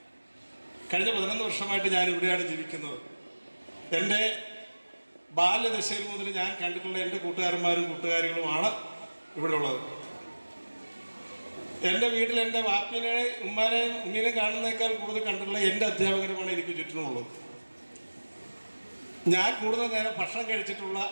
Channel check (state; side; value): inverted; both; correlation -1.00